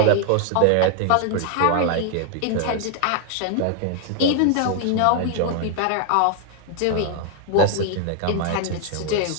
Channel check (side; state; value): both; different; correlation 0.00